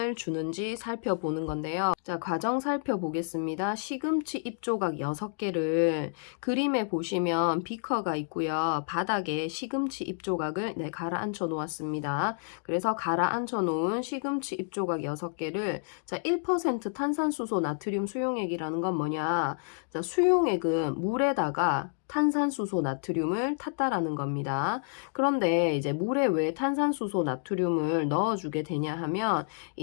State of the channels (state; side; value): silent; right; digital silence